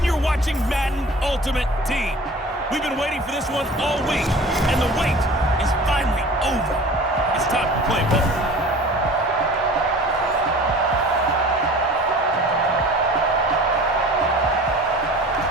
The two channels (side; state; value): both; normal; correlation 0.42